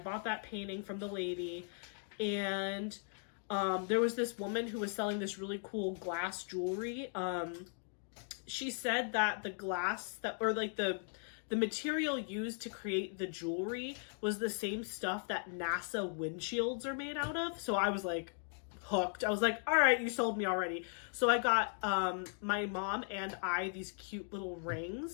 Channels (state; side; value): silent; right; 53 dB below the other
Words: that painting from the lady. And there was this woman who was selling this really cool glass jewelry. She said that the glass the material used to create the jewelry was the same stuff that NASA windshields are made out of. So I was like hooked. I was like, all right, you sold me already. So I got my mom and I these cute little